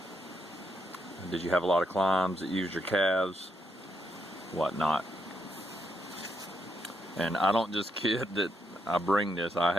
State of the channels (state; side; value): normal; both; correlation 0.78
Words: Did you have a lot of climbs that used your calves? What not? And I don't just kid that I bring this. I